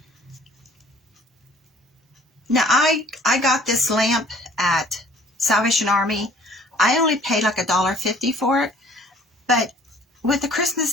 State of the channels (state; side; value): normal; both; correlation 0.54